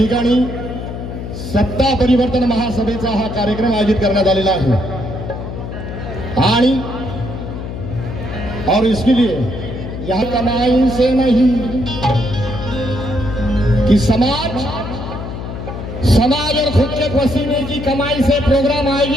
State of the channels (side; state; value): left; noise; hum, 7 dB below the sound